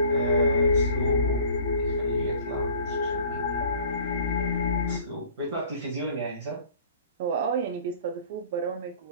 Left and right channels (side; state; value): both; inverted; correlation -0.50